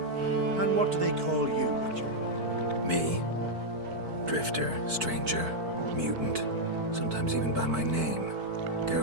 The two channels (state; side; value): late; left; 4.5 ms